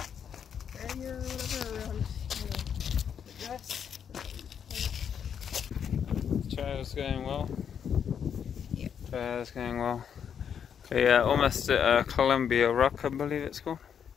Trail's going well. Yep. Trail's going well. Okay, yeah, almost at Columbia Rock, I believe it's called.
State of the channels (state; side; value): quieter; right; 7.9 dB